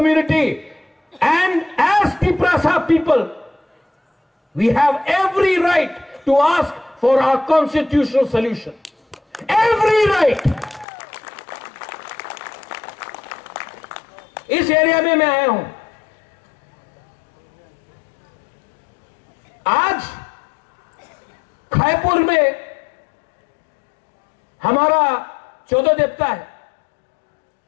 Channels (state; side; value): drops out; right; at 10.9 s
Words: and as Tiprasa people we have every right to ask for our constitutional solution, every right. इस एरिया में मैं आया हूं। आज खायपुर में हमारा 14 देवता है।